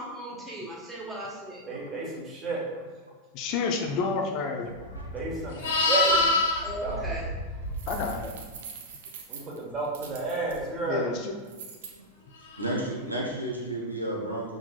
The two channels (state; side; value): normal; both; correlation -0.05